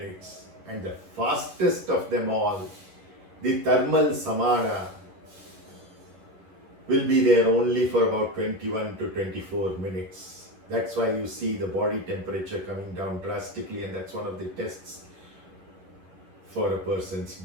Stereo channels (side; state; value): left; late; 11 ms